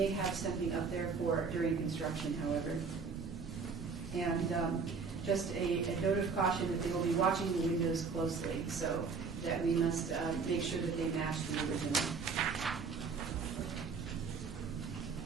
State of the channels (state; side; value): quieter; left; 5.1 dB